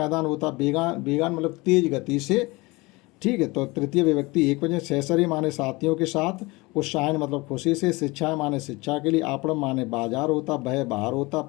होता, बेगान मतलब तेज गति से, ठीक है। तो तृतीय विभक्ति एक वचन, सहसरी माने साथियों के साथ, उत्साहन मतलब खुशी से, शिक्षा माने शिक्षा के लिए, आपड़म माने बाजार होता, बह बाहर होता,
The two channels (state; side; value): quieter; right; 23.5 dB